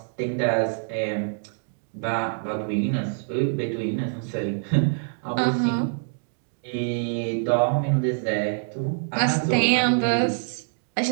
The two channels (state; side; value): silent; left; digital silence